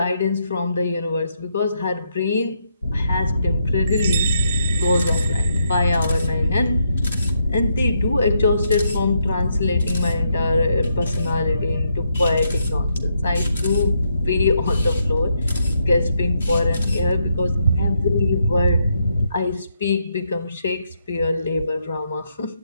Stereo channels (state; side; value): inverted; both; correlation -0.79